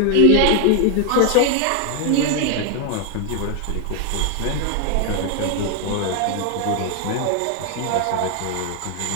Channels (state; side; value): different; both; correlation 0.00